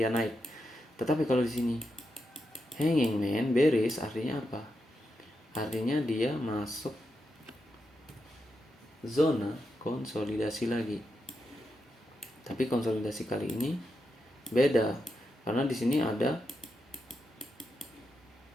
naik. Tetapi kalau di sini hanging man bearish, artinya apa? Artinya dia masuk zona konsolidasi lagi. Tapi konsolidasi kali ini beda, karena di sini ada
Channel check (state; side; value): normal; both; correlation 0.86